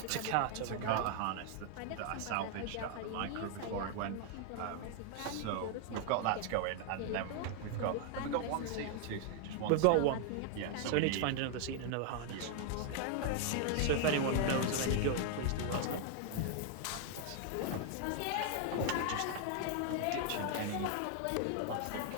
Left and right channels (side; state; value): both; different; correlation 0.00